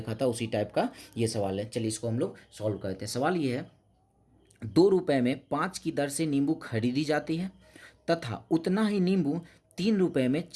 था उसी टाइप का ये सवाल है। चलिए इसको हम लोग सॉल्व करते हैं। सवाल ये है, 2 रुपए में 5 की दर से नींबू खरीदी जाती है तथा उतना ही नींबू 3 रुपए में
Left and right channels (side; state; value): both; identical; correlation 1.00